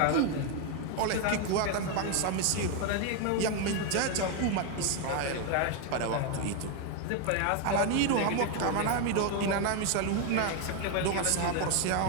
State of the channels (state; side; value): different; both; correlation 0.01